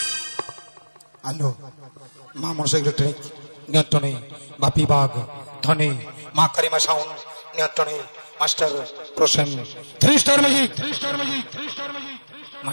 আলো মা মনসা ইলেকট্রনিক নিয়ন্ত্রণে, বাপি বাগ ধনে, মা কারিমা সাউন্ড নিয়ন্ত্রণে, master Prasen 3 star magic,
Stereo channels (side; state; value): both; inverted; correlation -1.00